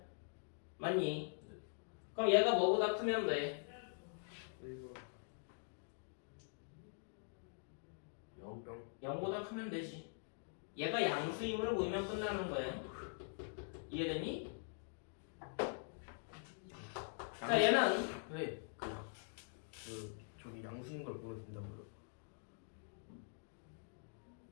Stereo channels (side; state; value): right; silent; digital silence